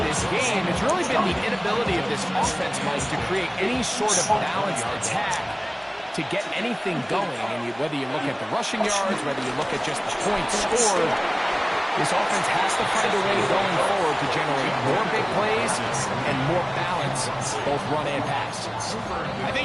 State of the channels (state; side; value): identical; both; correlation 1.00